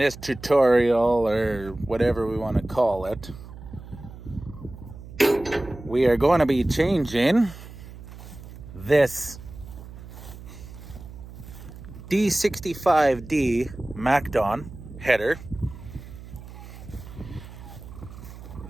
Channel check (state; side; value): noise; right; hum, 15 dB below the sound